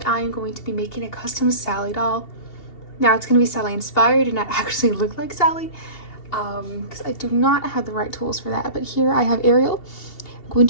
I am going to be making a custom Sally doll. Now it's going to be Sally inspired and not actually look like Sally, because I do not have the right tools for that. But here I have Ariel. I'm going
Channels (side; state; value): right; late; 2.7 ms